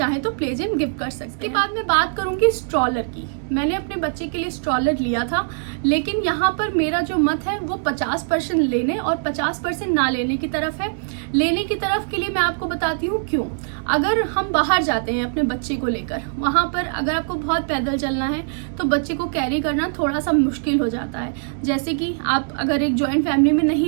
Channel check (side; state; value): left; silent; 64 dB below the other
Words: तो प्ले जिम गिफ्ट कर सकते हैं। इसके बाद मैं बात करूंगी स्ट्रॉलर की। मैंने अपने बच्चे के लिए स्ट्रॉलर लिया था, लेकिन यहाँ पर मेरा जो मत है वो 50% लेने और 50% ना लेने की तरफ है। लेने की तरफ के लिए मैं आपको बताती हूँ क्यों। अगर हम बाहर जाते हैं अपने बच्चे को लेकर, वहाँ पर अगर आपको बहुत पैदल चलना है तो बच्चे को कैरी करना थोड़ा सा मुश्किल हो जाता है। जैसे कि आप अगर एक जॉइंट फैमिली में